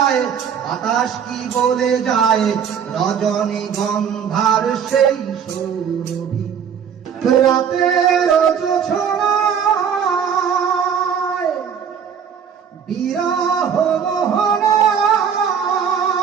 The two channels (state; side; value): quieter; left; 7.5 dB